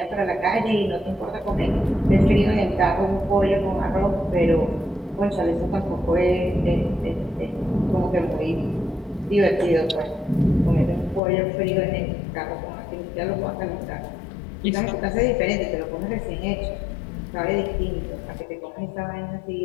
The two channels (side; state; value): right; drops out; at 11.2 s